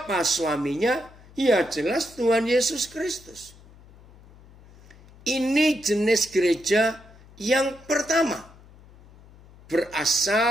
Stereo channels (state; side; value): noise; left; hum, 24 dB below the sound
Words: suaminya? Ya jelas Tuhan Yesus Kristus. Ini jenis gereja yang pertama.